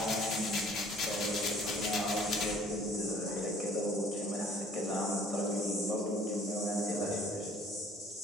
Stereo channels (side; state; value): both; normal; correlation 0.56